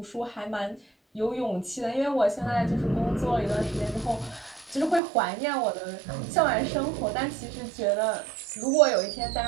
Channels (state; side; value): drops out; left; at 5.0 s